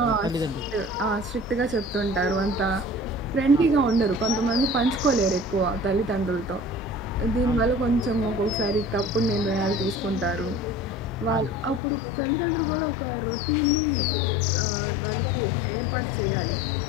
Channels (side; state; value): right; drops out; at 11.8 s